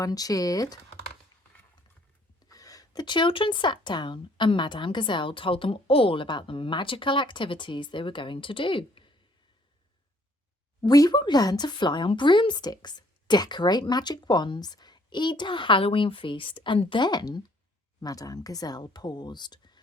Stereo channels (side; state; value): both; normal; correlation 0.63